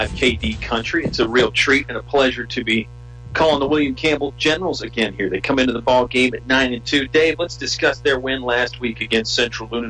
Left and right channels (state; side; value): identical; both; correlation 1.00